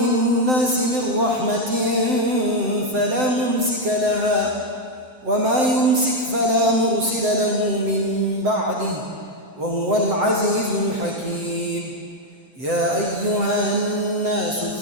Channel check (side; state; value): left; late; 7.8 ms